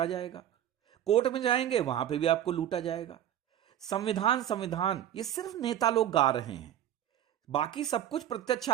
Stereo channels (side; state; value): left; quieter; 11.2 dB